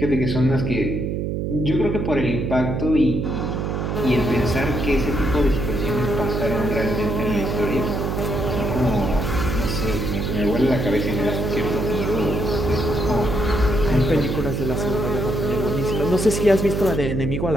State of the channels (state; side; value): noise; right; hum, 1 dB below the sound